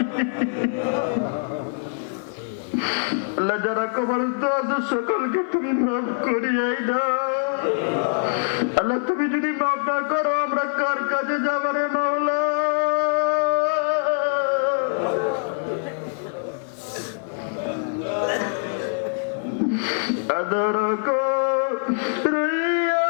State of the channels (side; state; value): right; silent; 57 dB below the other